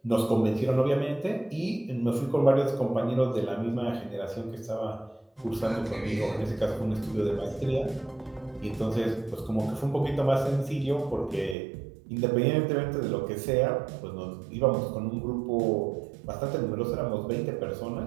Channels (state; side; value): drops out; left; at 11.6 s